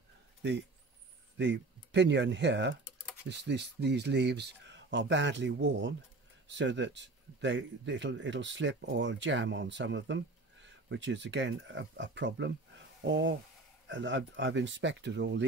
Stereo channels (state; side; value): quieter; left; 3.2 dB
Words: pinion here, these leaves are badly worn, so that it'll slip or jam on some of them, which is again a problem, or, and I've inspected all